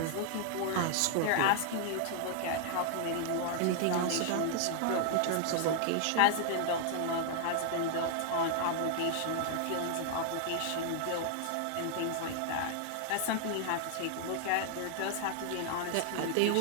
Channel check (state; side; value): different; both; correlation 0.00